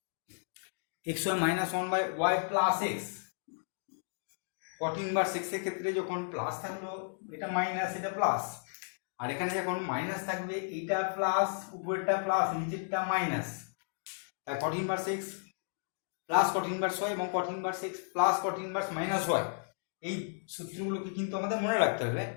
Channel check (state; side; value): silent; right; digital silence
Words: x y minus one by y plus x. cot inverse x এর ক্ষেত্রে যখন প্লাস থাকলো এটা মাইনাস এটা প্লাস, আর এখানে যখন মাইনাস থাকবে এটা প্লাস উপরেরটা প্লাস নিচেরটা মাইনাস, তাই cot inverse x plus cot inverse y এবং cot inverse x plus cot inverse minus y, এই সূত্রগুলোকে কিন্তু আমাদের মনে রাখতে হবে।